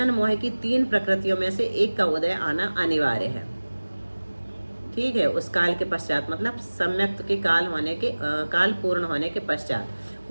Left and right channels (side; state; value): both; inverted; correlation -1.00